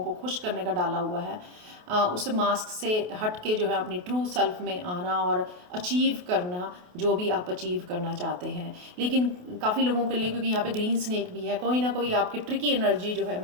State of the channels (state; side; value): late; left; 28 ms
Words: को खुश करने का डाला हुआ है, उस मास्क से हट के जो है अपनी ट्रू सेल्फ में आना और अचीव करना जो भी आप अचीव करना चाहते हैं। लेकिन काफ़ी लोगों के लिए, क्योंकि यहाँ पे ग्रीन स्नेक भी है, कोई ना कोई आपकी ट्रिकी एनर्जी जो है,